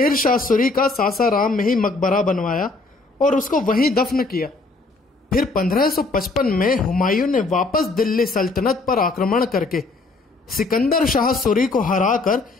शाह सूरी का सासाराम में ही मकबरा बनवाया और उसको वहीं दफन किया। फिर 1555 में हुमायूं ने वापस दिल्ली सल्तनत पर आक्रमण करके सिकंदर शाह सूरी को हराकर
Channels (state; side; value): quieter; right; 3.5 dB